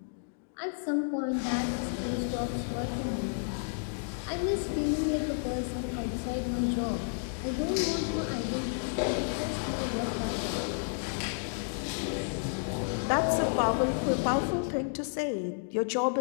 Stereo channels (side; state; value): right; silent; digital silence